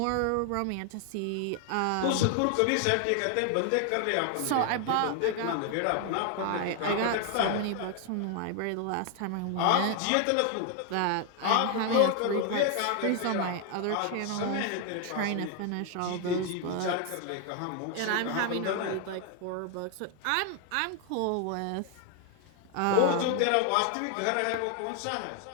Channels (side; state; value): both; different; correlation 0.00